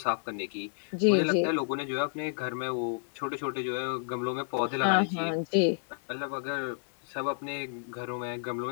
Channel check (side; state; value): right; silent; digital silence